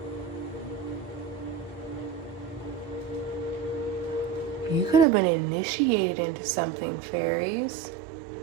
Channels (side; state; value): left; drops out; at 5.1 s